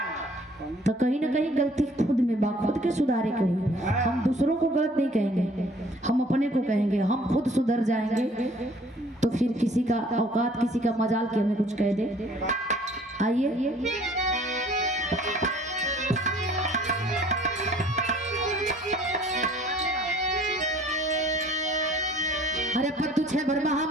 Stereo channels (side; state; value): both; normal; correlation 0.55